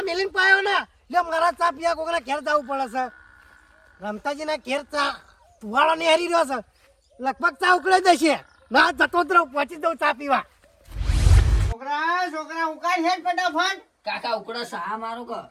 મેલીને પાયો ને એટલે મારા ચા પીવા કોકના ઘેર જવું પડે છે રમતાજીના ઘેર ચા તુવાળો ને હારી રહ્યો છે લગભગ ચા ઉકળાઈ દેશે ના જતો જ રહું પહોંચી દઉં ચા પીવા છોકરા ઉકાળ છે ફટાફટ કાકા ઉકળો સા મારો ક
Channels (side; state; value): both; identical; correlation 1.00